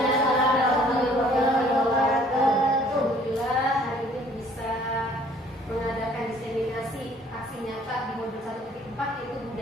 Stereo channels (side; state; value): both; normal; correlation 0.57